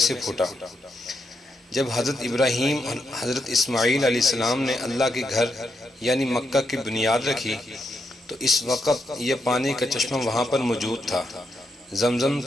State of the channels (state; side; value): normal; both; correlation 0.82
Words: سے پھوٹا۔ جب حضرت ابراہیم اور حضرت اسماعیل علیہ السلام نے اللہ کے گھر یعنی مکہ کی بنیاد رکھی تو اس وقت یہ پانی کا چشمہ وہاں پر موجود تھا۔ زمزم